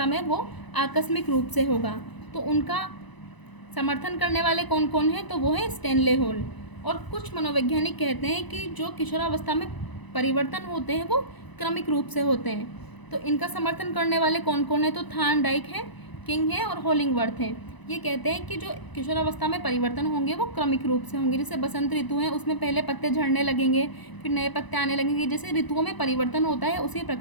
में वो आकस्मिक रूप से होगा, तो उनका समर्थन करने वाले कौन कौन हैं, तो वो है स्टैनले हॉल। और कुछ मनोवैज्ञानिक कहते हैं कि जो किशोरावस्था में परिवर्तन होते हैं वो क्रमिक रूप से होते हैं। तो इनका समर्थन करने वाले कौन कौन है, तो थार्नडाइक है, किंग है और होलिंगवर्थ है। ये कहते हैं कि जो किशोरावस्था में परिवर्तन होंगे वो क्रमिक रूप से होंगे। जैसे बसंत ऋतु है, उसमें पहले पत्ते झड़ने लगेंगे, फिर नए पत्ते आने लगेंगे। जैसे ऋतुओं में परिवर्तन होता है उसी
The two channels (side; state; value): right; late; 1.0 ms